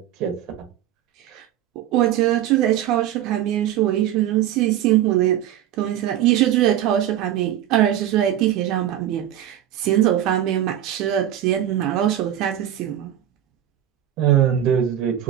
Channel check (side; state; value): left; quieter; 11.5 dB